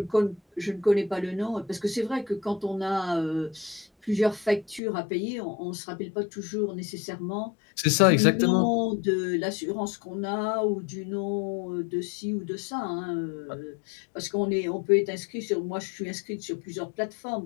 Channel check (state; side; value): drops out; right; at 4.8 s